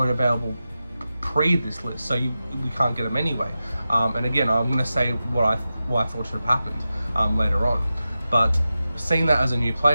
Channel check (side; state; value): both; inverted; correlation -0.92